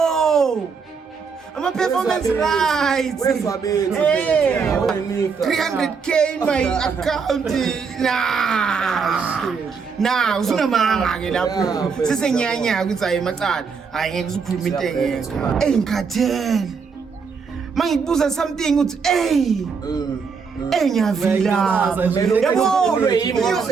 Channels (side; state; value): left; quieter; 5.6 dB